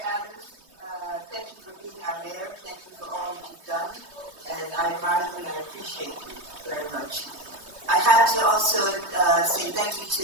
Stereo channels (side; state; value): left; late; 3.2 ms